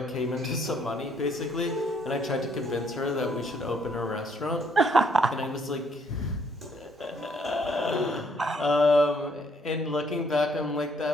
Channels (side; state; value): both; normal; correlation 0.67